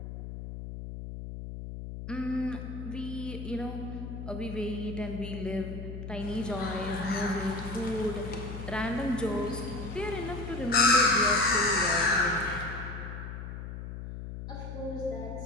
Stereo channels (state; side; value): noise; left; hum, 8 dB below the sound